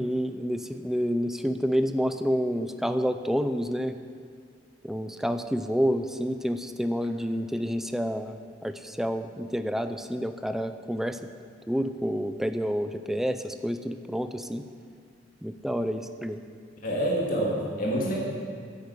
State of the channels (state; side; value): normal; both; correlation 0.85